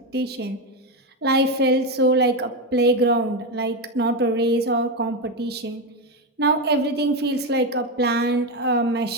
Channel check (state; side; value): normal; both; correlation 0.11